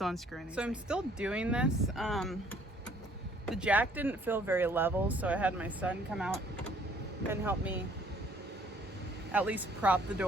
unscrewing these things. I'm still doing this. The jack didn't feel very level, so I had my son come out and help me at least prop the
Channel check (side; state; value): both; normal; correlation 0.60